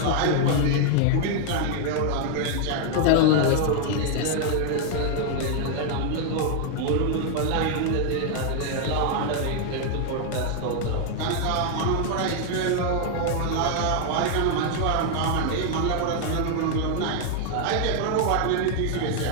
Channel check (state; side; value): different; both; correlation 0.00